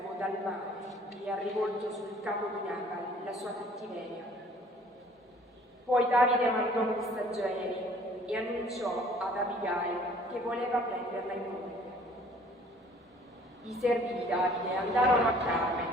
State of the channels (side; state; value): both; normal; correlation 0.55